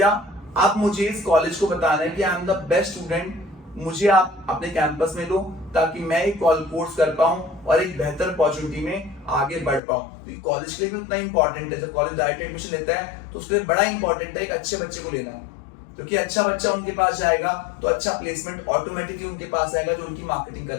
आप मुझे इस कॉलेज को बताना है कि I am the best student, मुझे आप अपने कैंपस में लो ताकि मैं एक कोर्स कर पाऊं और एक बेहतर अपॉर्चुनिटी में आगे बढ़ पाऊं। तो कॉलेज के लिए भी उतना इंपॉर्टेंट है, जब कॉलेज डायरेक्ट एडमिशन लेता है तो उसके लिए बड़ा इंपॉर्टेंट है एक अच्छे बच्चे को लेना है, क्योंकि अच्छा बच्चा उनके पास जाएगा तो अच्छा प्लेसमेंट ऑटोमेटिकली उनके पास आएगा जो उनकी मार्केटिंग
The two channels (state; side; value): drops out; right; at 9.8 s